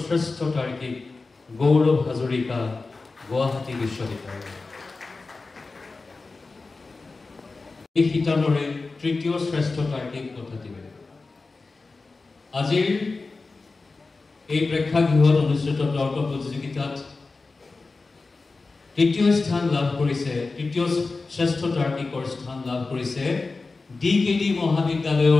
শ্ৰেষ্ঠ তাৰ্কিক গৌৰৱ হাজৰিকা গুৱাহাটী বিশ্ববিদ্যালয় এই শিতানৰে তৃতীয় শ্ৰেষ্ঠ তাৰ্কিক বঁটাটি আজিৰ এই প্ৰেক্ষাগৃহত অনুষ্ঠিত তৰ্ক প্ৰতিযোগিতাত তৃতীয় স্থান লাভ কৰিছে তৃতীয় শ্ৰেষ্ঠ তাৰ্কিকৰ স্থান লাভ কৰিছে ডিকেডি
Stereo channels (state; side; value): quieter; right; 3.8 dB